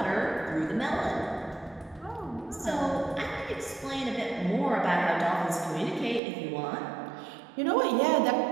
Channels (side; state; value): left; drops out; at 6.2 s